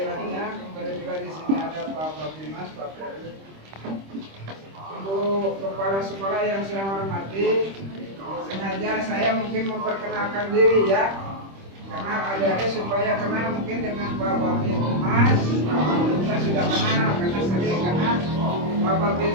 Kemudian juga di sini ada Pak Babimas, Pak Ferdi. Ibu kepala sekolah yang saya hormati, sengaja saya mungkin memperkenalkan diri ya, karena adik-adik supaya kenal mungkin dengan Pak Babimas. Pak Babinsa sudah kenal karena sering, karena Pak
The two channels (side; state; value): left; late; 26 ms